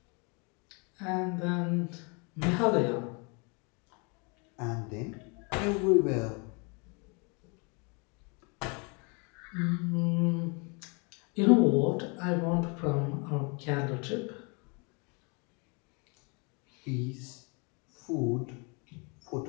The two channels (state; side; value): quieter; right; 32.6 dB